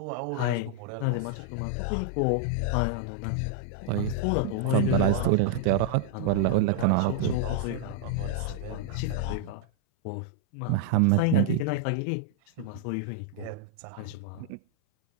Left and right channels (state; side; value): different; both; correlation -0.01